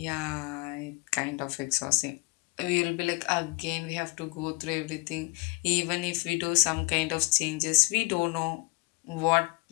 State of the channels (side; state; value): right; quieter; 28.7 dB